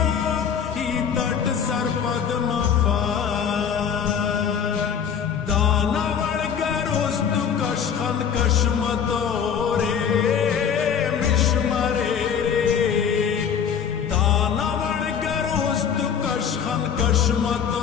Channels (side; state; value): right; quieter; 7.6 dB